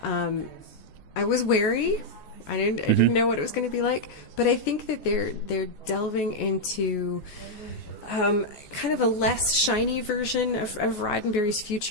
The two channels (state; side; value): late; right; 14 ms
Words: I was wary. I didn't know what it was going to be like, but I think that they're delving into kind of a less shiny version of Roddenberry's